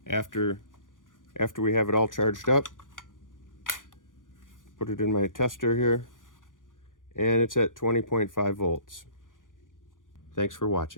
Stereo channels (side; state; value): right; late; 0.88 ms